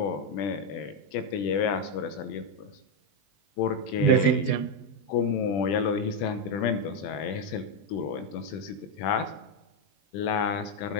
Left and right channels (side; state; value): right; late; 20 ms